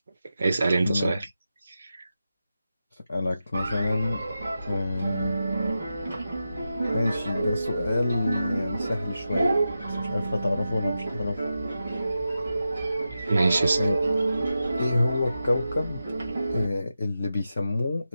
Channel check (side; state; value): both; inverted; correlation -0.90